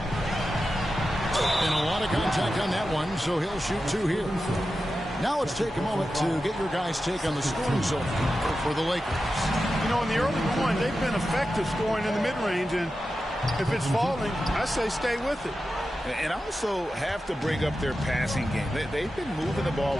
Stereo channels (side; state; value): both; normal; correlation 0.92